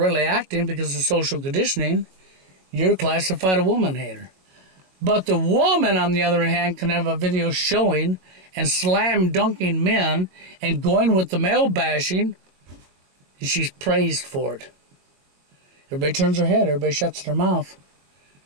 acting because of social conditioning, you're classified a woman hater. But the woman, on the other hand, can have a video showing and slam dunking men and going with the male bashing, and she's praised for it. Everybody turns their head. Everybody shuts their mouth.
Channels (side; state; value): left; late; 21 ms